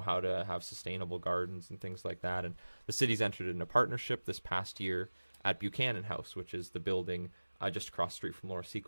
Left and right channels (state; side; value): inverted; both; correlation -1.00